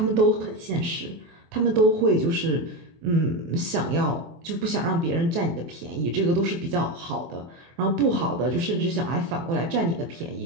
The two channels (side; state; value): left; late; 24 ms